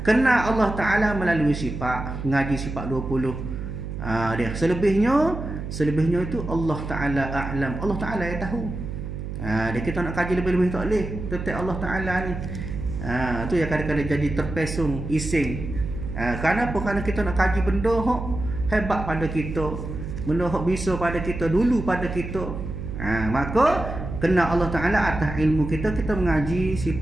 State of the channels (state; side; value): noise; right; hum, 7 dB below the sound